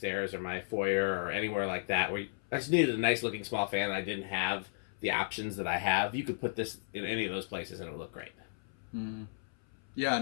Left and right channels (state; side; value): silent; right; 55 dB below the other